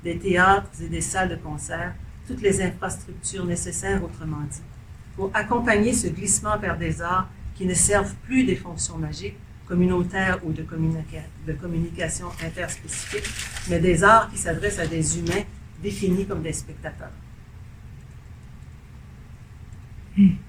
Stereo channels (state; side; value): identical; both; correlation 1.00